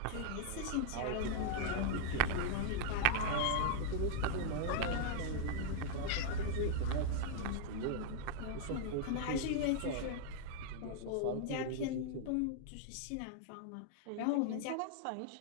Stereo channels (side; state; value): both; different; correlation -0.01